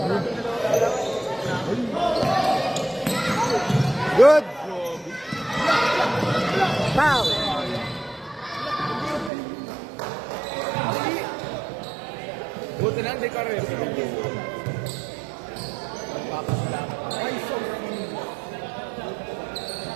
Good. Foul. Buti na, hindi ka rin.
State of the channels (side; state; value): left; drops out; at 9.3 s